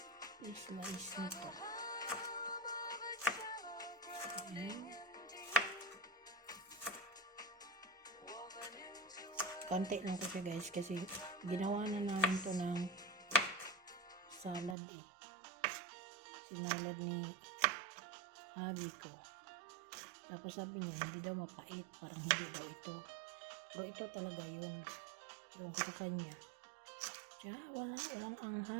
slice nito. Ayan. Konti lang ko siya guys kasi ginawa na namin to ng salad eh. Sinalad ni hubby ko. Tapos sabi niya hindi daw mapait, parang hindi daw ito. Pero ito talaga yung ko sa kanya. Tiya, walang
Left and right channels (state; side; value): drops out; left; at 14.8 s